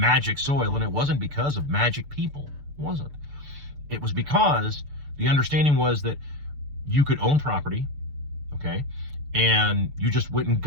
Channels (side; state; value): left; late; 6.9 ms